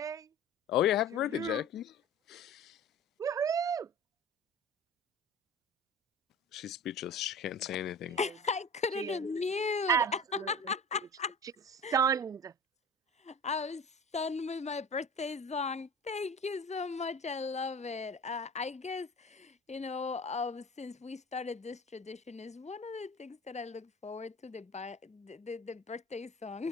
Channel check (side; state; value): both; normal; correlation 0.37